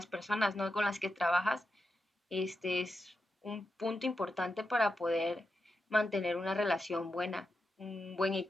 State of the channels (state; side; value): normal; both; correlation 0.88